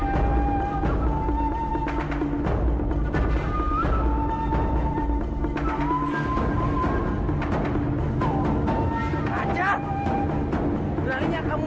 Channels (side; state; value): both; identical; correlation 1.00